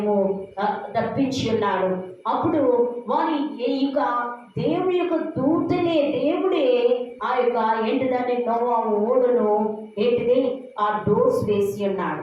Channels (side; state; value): both; identical; correlation 1.00